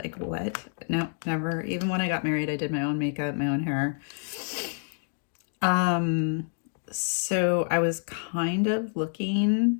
what? No, never. Even when I got married, I did my own makeup, my own hair. So I was kind of looking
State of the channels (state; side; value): silent; right; 57 dB below the other